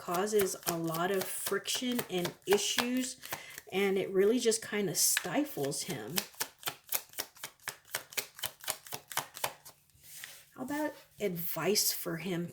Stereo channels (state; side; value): identical; both; correlation 1.00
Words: a lot of friction and issues, and it really just kind of stifles him. How about advice for him